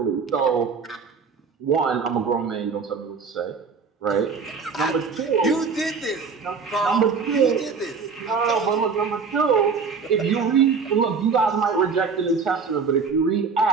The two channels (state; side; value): quieter; left; 5.3 dB